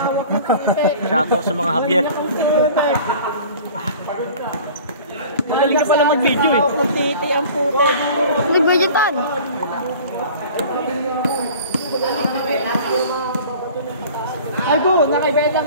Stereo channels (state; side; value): inverted; both; correlation -0.44